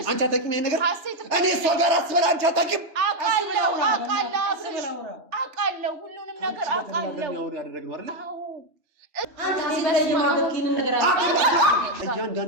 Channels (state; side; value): late; left; 3.3 ms